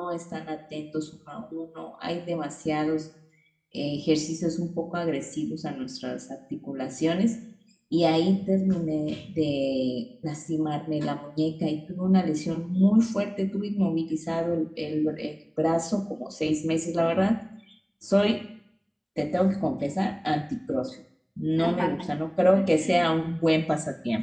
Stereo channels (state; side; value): identical; both; correlation 1.00